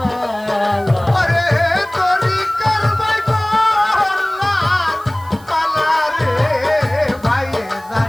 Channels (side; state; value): right; noise; hiss, 25 dB below the sound